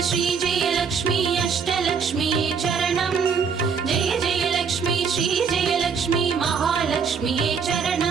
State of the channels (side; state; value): left; quieter; 6.1 dB